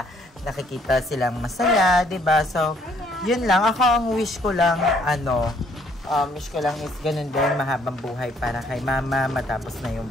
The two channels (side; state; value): both; normal; correlation 0.65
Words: nakikita silang masaya, diba? So, yun lang. Ako ang wish ko lang, wish ko lang is ganun din, mahabang buhay para kay mama, matapos na yung